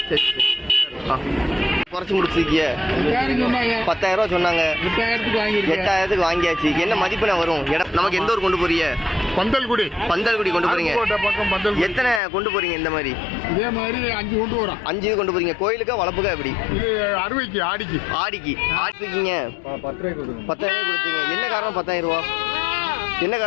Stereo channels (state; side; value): drops out; right; at 12.2 s